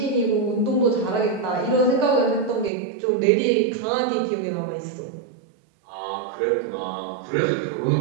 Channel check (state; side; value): drops out; left; at 2.7 s